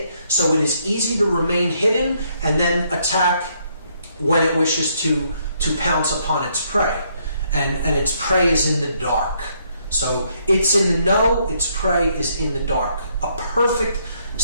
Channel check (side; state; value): both; inverted; correlation -0.71